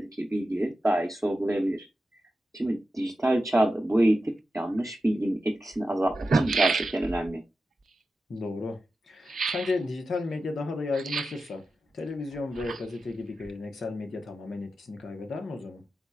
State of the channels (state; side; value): normal; both; correlation 0.91